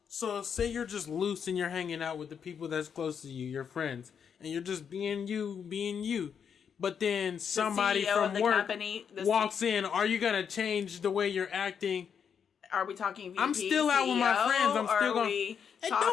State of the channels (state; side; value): quieter; right; 7.3 dB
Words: So say you're just loose and you're hanging out with the people that's close to you, your friends, and you're just being you. But then somebody CEO from of the work company, walks in. Are you gonna change the way you're acting? Are we talking VP, I'm still out with my CEO, friends. I'm still or going. It